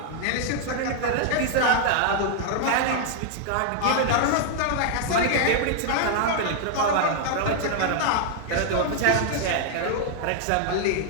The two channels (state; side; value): different; both; correlation -0.01